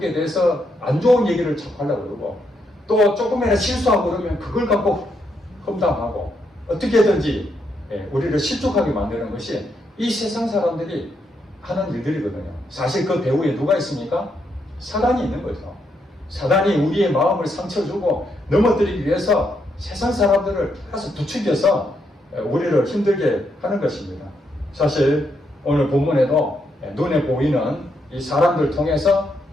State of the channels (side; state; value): both; normal; correlation 0.78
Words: 대해서 안 좋은 얘기를 자꾸 하려고 그러고, 또 조금이라도 실수하고 그러면 그걸 갖고 험담하고, 어떻게든지 우리를 실족하게 만드는 것이 이 세상 사람들이 하는 일들이거든요. 사실 그 배후에 누가 있습니까? 사단이 있는 거죠. 사단이 우리의 마음을 상처 주고 넘어뜨리기 위해서 세상 사람들을 계속 부추겨서 우리를 힘들게 하는 것입니다. 사실 오늘 본문에도 눈에 보이는 이 사람들 통해서